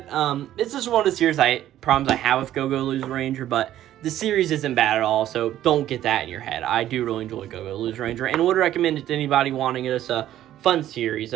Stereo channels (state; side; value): quieter; left; 12.6 dB